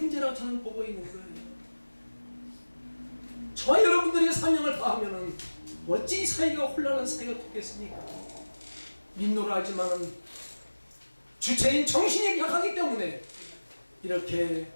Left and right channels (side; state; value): both; inverted; correlation -1.00